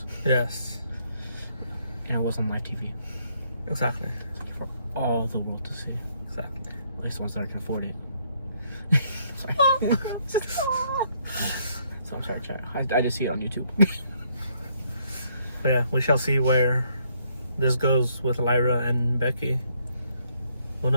Yes. And it was on live TV. Exactly. For all the world to see. Exactly. At least the ones that can afford it. Sorry. So I'm sorry, chat. I just see it on YouTube. But yeah, we shall see where this goes with Lyra and Becky. Who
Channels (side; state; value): both; inverted; correlation -0.70